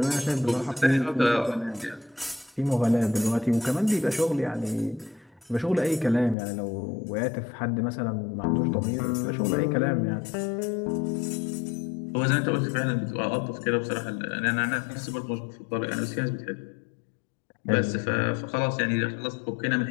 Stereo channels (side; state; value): right; drops out; at 6.4 s